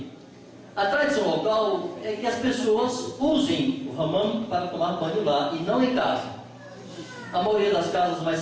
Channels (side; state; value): both; identical; correlation 1.00